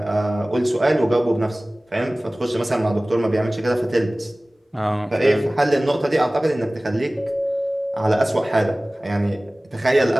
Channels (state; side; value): normal; both; correlation 0.98